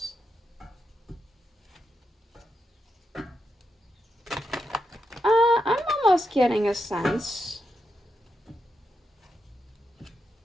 I'm almost getting a sense.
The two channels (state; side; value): normal; both; correlation 0.85